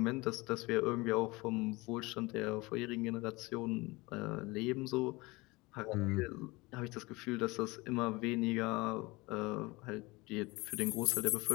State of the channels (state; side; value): quieter; right; 23.2 dB